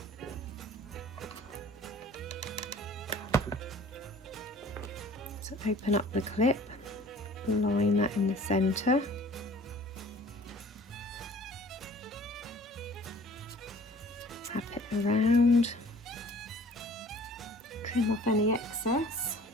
So open up the clip, line that in the centre. Tap it around. Trim off any excess.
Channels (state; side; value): normal; both; correlation 0.49